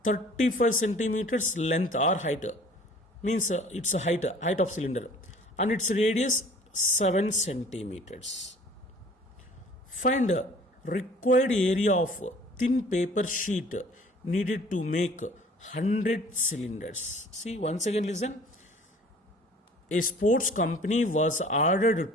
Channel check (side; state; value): both; normal; correlation 0.50